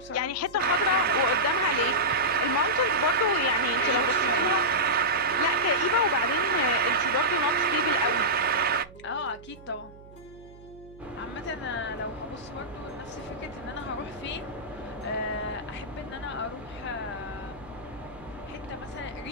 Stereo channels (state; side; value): noise; right; hum, 21 dB below the sound